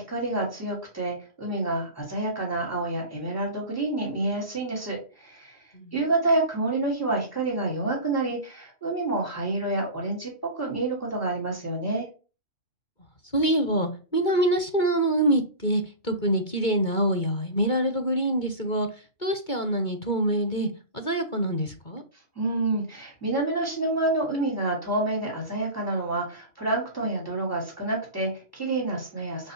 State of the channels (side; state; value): right; late; 2.2 ms